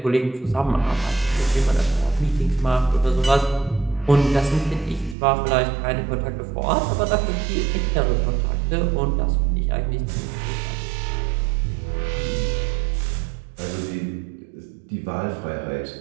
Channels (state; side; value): drops out; left; at 5.2 s